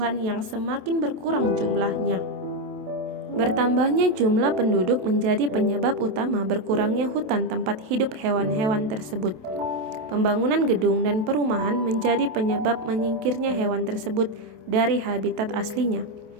yang semakin berkurang jumlahnya. Bertambahnya jumlah penduduk menjadi penyebab utama berkurangnya hutan tempat hidup hewan-hewan tersebut. Pembangunan gedung dan perumahan menjadi penyebab menyingkirnya hewan tersebut dari habitat aslinya.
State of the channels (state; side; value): late; left; 27 ms